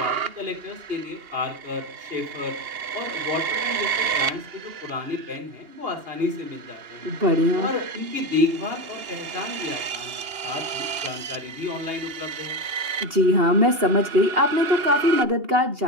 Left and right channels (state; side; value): late; left; 2.8 ms